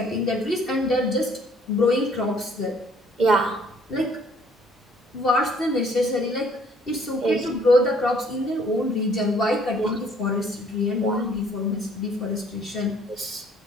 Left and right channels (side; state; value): both; normal; correlation 0.60